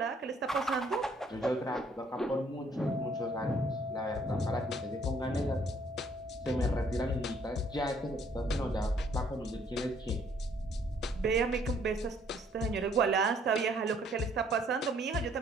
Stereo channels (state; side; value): normal; both; correlation 0.64